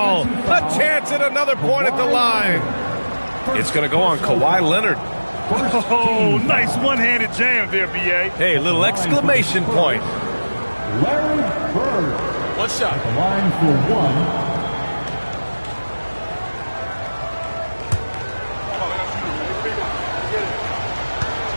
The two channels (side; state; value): both; inverted; correlation -1.00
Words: A chance at another point at the line. It's going to go on Kawhi Leonard. Oh, nice one-handed jam there, B.A. Hey, little exclamation point. Larry Bird. One shot. At the line for 1.